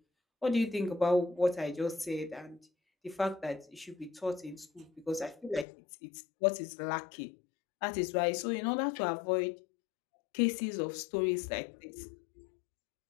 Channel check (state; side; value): drops out; right; at 5.7 s